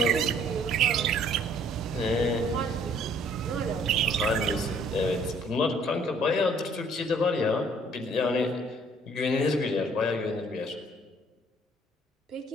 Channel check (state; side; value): normal; both; correlation 0.60